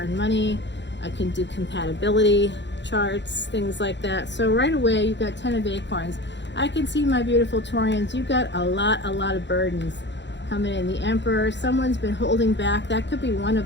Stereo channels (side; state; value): right; late; 0.52 ms